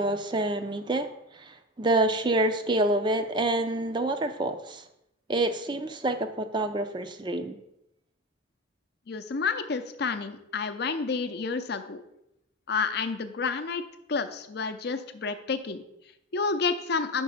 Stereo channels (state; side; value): normal; both; correlation 0.23